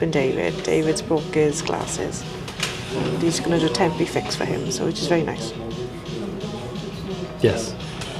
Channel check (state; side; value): identical; both; correlation 1.00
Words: David. David's broke his glasses. And he's going to do a temporary fix for him, so which is very nice. Yes.